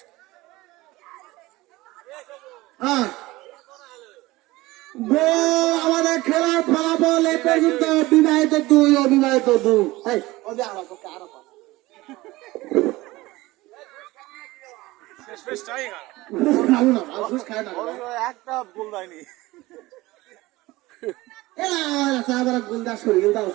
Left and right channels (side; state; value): left; quieter; 19.6 dB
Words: আমাদের খেলার ফলাফল এ পর্যন্ত বিবাহিত 2, অবিবাহিত 2। একটা বল দেয়নি। গুলদাস করে গেল